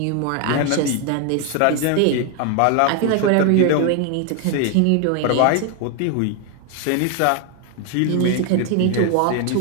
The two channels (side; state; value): both; different; correlation 0.01